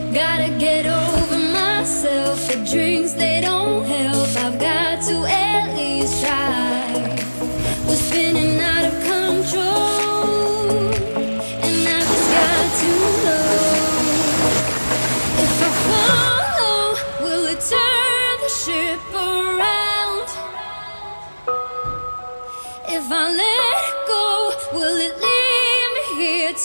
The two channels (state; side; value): inverted; both; correlation -1.00